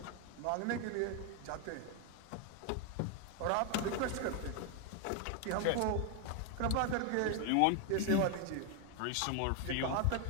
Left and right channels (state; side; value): different; both; correlation 0.01